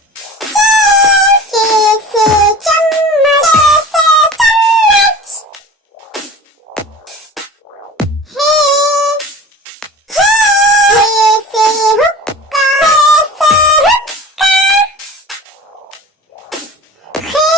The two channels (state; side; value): normal; both; correlation 0.38